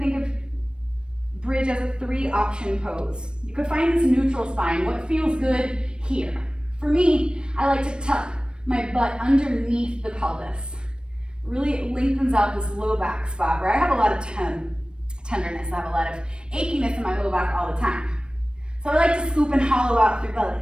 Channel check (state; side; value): late; left; 0.053 ms